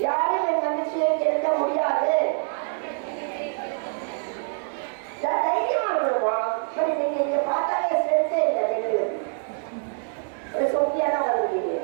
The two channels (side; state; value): left; silent; 62 dB below the other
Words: யாரும் என் மகிழ்ச்சியை கேட்க முடியாது. தைரியமா இருக்கணுமா? சரி, நீங்க இங்க பார்த்தாலே ஸ்ட்ரெஸ்ஸே இல்லை, பெண்களுக்கு ஒரு சொத்தியா தான் வந்துருக்கீங்க.